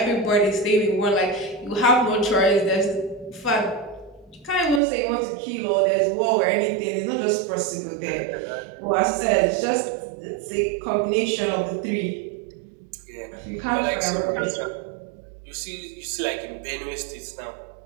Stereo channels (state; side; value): drops out; left; at 4.8 s